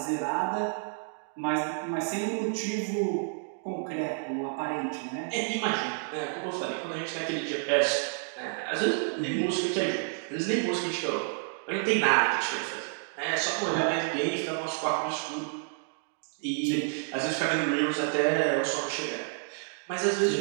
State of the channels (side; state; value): left; silent; 58 dB below the other